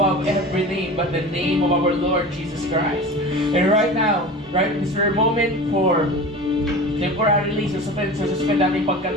every name but the name of our Lord Jesus Christ. And right now, right at this very moment, for temporarily suspend natin yung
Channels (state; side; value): normal; both; correlation 0.34